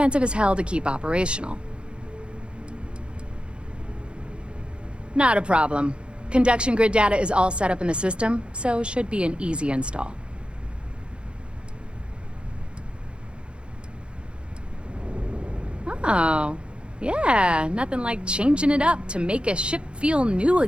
as hell to keep operational. Not a problem. Conduction grid data is all set up in the system, so should be an easy install. Oh, yeah, nothing like changing it up to make a ship feel new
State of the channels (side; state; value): left; late; 0.056 ms